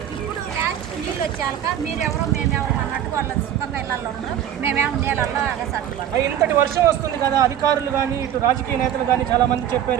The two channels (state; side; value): quieter; left; 10.5 dB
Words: ఇప్పుడు లాస్ట్ నీళ్ళు వచ్చాక మీరెవరో మేమెవరో అన్నట్టు వాళ్ళ సుఖంగా ఇళ్ళల్లో ఉన్నారు. మేమేమో నీళ్ళల్లో అగసట్టుకోవాలి. ఇంతటి వర్షం వస్తుంది కదా, అధికారులు కానీ ఇటు రాజకీయ నేతలు కానీ చాలా మంది